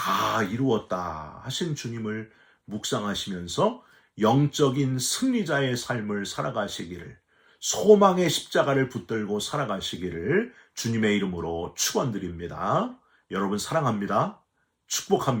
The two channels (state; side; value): identical; both; correlation 1.00